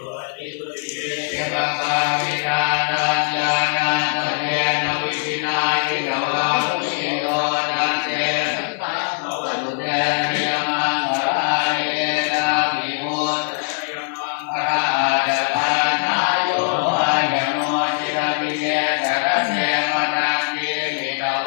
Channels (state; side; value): silent; right; 65 dB below the other